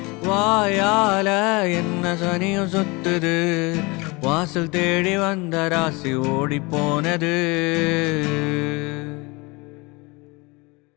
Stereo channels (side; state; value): right; quieter; 26.0 dB